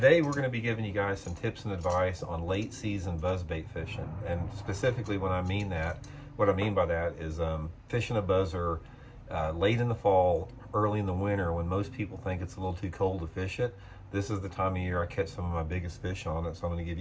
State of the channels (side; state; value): both; identical; correlation 1.00